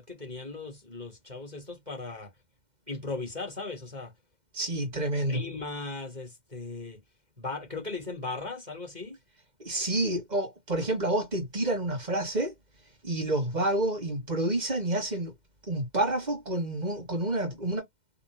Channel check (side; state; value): left; late; 2.1 ms